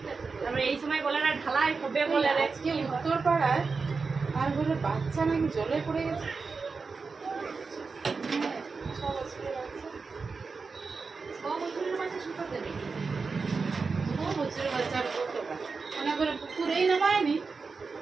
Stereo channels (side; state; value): left; quieter; 4.6 dB